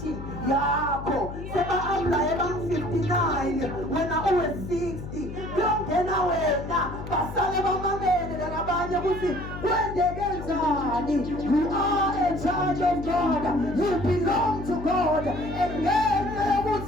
yakho seba amlaye bang59 wena uwe 60 kuyongena wena basale bamamele labanye ukuthi kwendeke njani. You are a child of God, you belong to God and ngenxa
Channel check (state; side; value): noise; left; hum, 9 dB below the sound